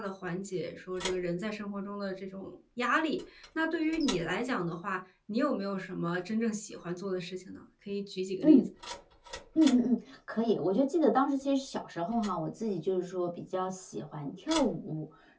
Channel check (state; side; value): identical; both; correlation 1.00